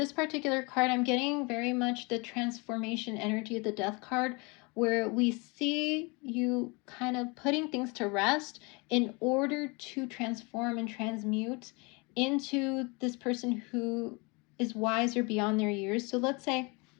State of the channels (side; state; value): right; quieter; 28.8 dB